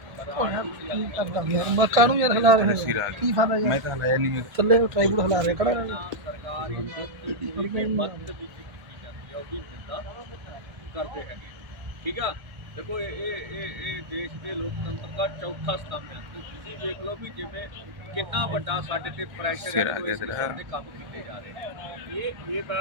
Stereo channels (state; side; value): late; left; 1.3 ms